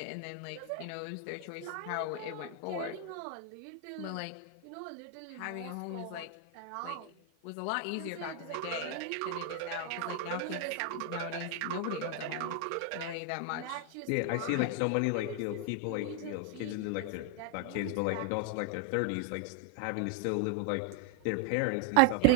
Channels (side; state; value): both; different; correlation 0.00